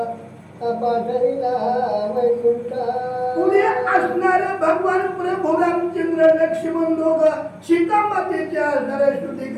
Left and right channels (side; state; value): both; identical; correlation 1.00